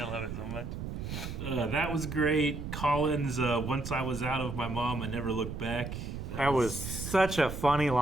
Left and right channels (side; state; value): right; noise; rumble, 6 dB below the sound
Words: love it so much. That was great. Colin's once I was out of my mom, I never looked back. That was such a funny